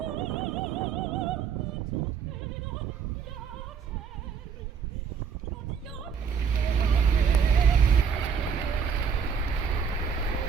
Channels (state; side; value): quieter; left; 6.6 dB